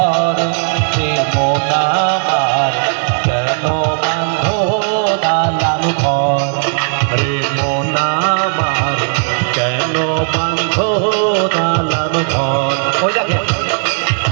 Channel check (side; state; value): left; silent; 68 dB below the other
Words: মন আমার কেন বান্ধ দালান ঘর, মন আমার কেন বান্ধ দালান ঘর। ওই দেখেন